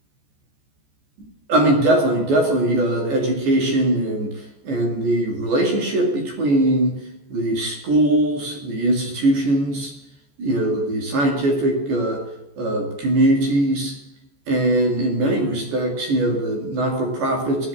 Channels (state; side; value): late; left; 14 ms